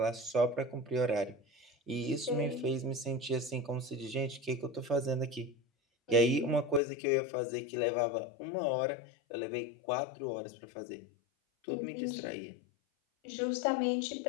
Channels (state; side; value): drops out; right; at 6.8 s